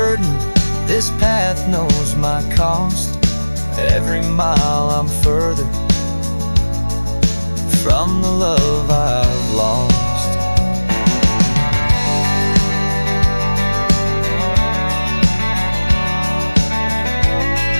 this path knows my cost. Every mile I'm further from the love I've lost.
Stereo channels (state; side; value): inverted; both; correlation -1.00